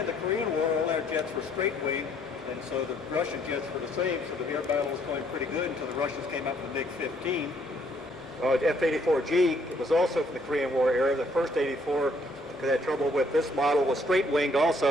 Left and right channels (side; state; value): both; normal; correlation 0.66